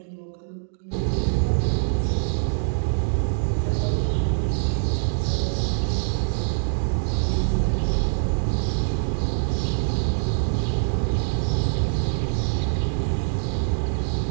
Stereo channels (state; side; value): silent; left; digital silence